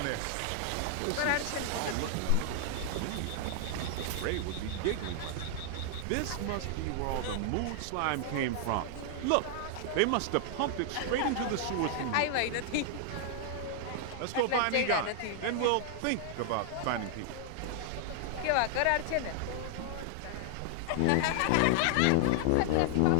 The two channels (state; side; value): different; both; correlation -0.01